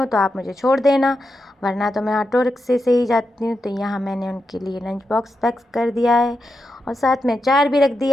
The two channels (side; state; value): both; normal; correlation 0.87